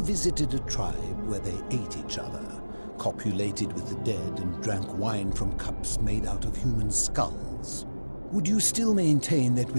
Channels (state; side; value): inverted; both; correlation -1.00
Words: visited a tribe where they ate each other, copulated with the dead and drank wine from cups made out of human skulls, would you still maintain that